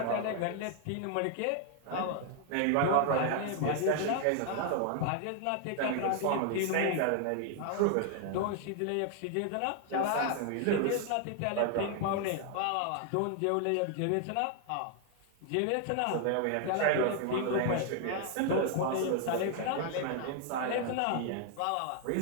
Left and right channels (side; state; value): both; different; correlation 0.00